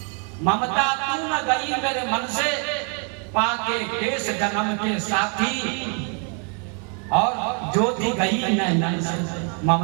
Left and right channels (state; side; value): quieter; left; 39.2 dB